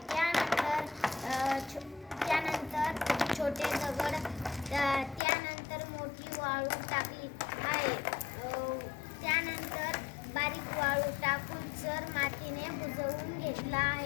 त्यानंतर छोटे दगड, त्यानंतर मोठी वाळू टाकली आहे. त्यानंतर बारीक वाळू टाकून चर मातीने बुजवून घेतला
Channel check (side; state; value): right; drops out; at 5.2 s